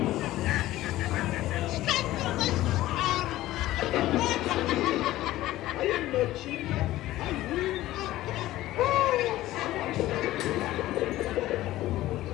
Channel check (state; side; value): quieter; right; 15.7 dB